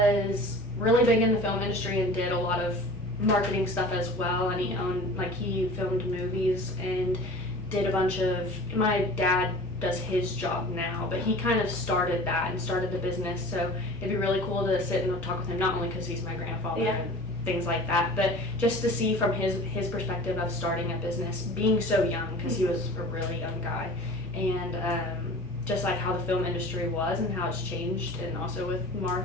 really big in the film industry and did a lot of marketing stuff as well. And he filmed movies and did a bunch of. My dad does his job now, but he kind of started that and started the business. So it'd be really cool to sit and talk with him, not only because he's my grandfather and things like that, but just to see from his perspective of starting a business, being so young, because he was a really young guy, and just like how the film industry was and how it's changed, and also with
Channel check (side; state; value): both; normal; correlation 0.40